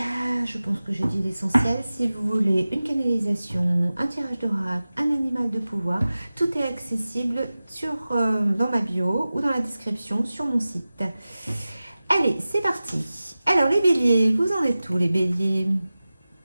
Je pense que j'ai dit l'essentiel. Si vous voulez une canalisation, un tirage d'oracle, un animal de pouvoir, tout est accessible dans ma bio ou dans la description sur mon site. Allez, c'est parti. Alors, les béliers, vous en êtes où, les béliers?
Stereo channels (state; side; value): inverted; both; correlation -0.96